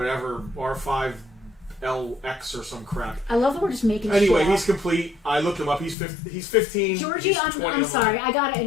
R5LX or some crap. I love that we're just making Anyway, shit he's complete. I looked him up. He's 15. Georgie, he's I'm 20 sorry. I gotta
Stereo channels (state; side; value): drops out; right; at 6.0 s